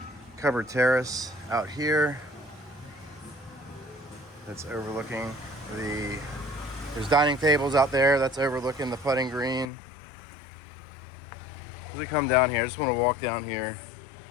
covered terrace out here that's overlooking there's dining tables out there that's overlooking the putting green. As we come down here, I just want to walk down here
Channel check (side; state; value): right; drops out; at 9.7 s